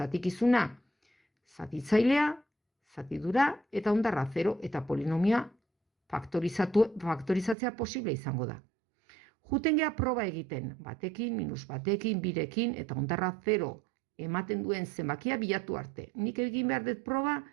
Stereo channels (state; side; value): drops out; left; at 7.6 s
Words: zatitzailea, zatidura eta ondarra 0 eta polinomioa faktorizatzea posible izango da. Juten gea proba egiten, batekin, -batekin, 2rekin eta ondarra 0 ematen duen zenbakia bilatu arte. Nik egin behar dut proba